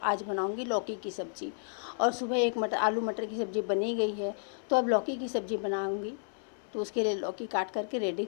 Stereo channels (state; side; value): silent; right; 57 dB below the other